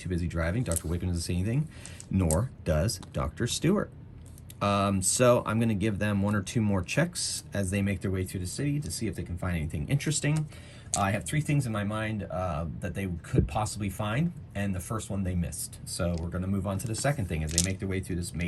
busy driving. Dr. Wickham doesn't see anything, nor does Dr. Stewart. So I'm going to give them 1 or 2 more checks as they make their way through the city to see if they can find anything interesting. I have 3 things in my mind that they could possibly find, and the first one they missed. So we're going to move on to the second thing as they make their way through this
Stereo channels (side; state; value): both; identical; correlation 1.00